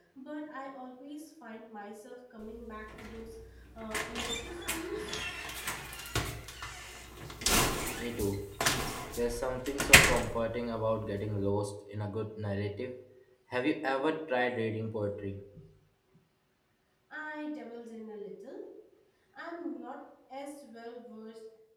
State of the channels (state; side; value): identical; both; correlation 1.00